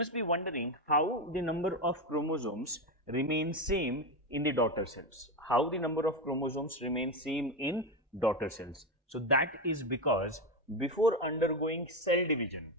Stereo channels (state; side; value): normal; both; correlation 0.13